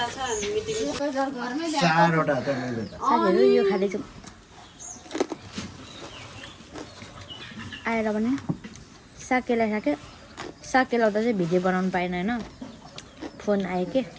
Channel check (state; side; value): identical; both; correlation 1.00